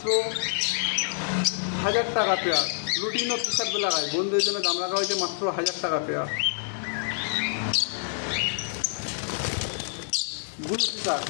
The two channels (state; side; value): silent; right; digital silence